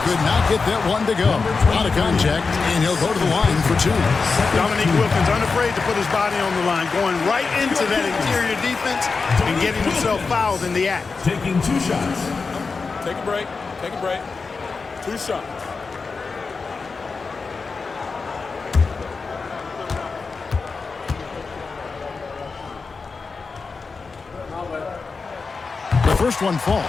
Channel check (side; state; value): right; quieter; 4.5 dB